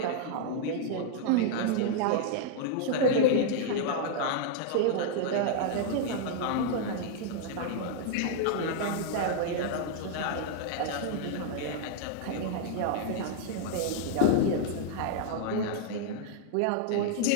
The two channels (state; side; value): different; both; correlation -0.01